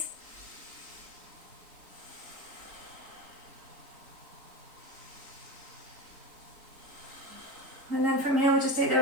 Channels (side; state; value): left; late; 3.8 ms